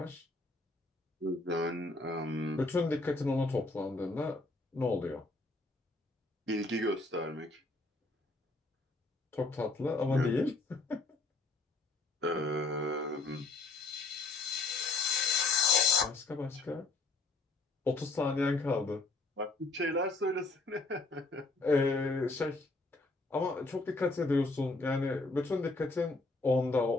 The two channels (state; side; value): quieter; right; 3.2 dB